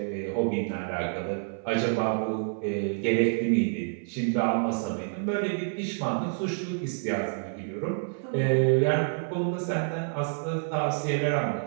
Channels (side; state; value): left; silent; 59 dB below the other